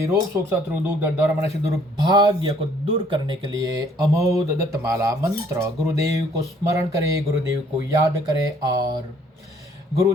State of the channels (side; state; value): both; normal; correlation 0.61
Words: रोग शोक शत्रु दुख दर्द मनुष्य दुर्भाग्य को दूर करने के लिए अमोद दत्तमाला मंत्र गुरुदेव को स्मरण करें, गुरुदेव को याद करें और